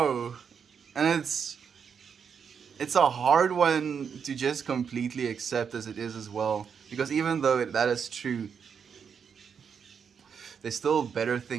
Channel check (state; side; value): quieter; left; 6.8 dB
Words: And it's a hard one to just completely accept as it is as well. Because even though that is true, there's still better